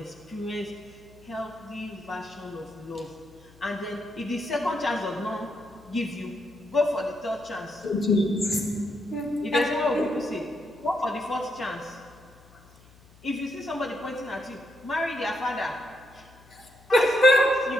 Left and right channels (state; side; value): noise; left; hum, 25 dB below the sound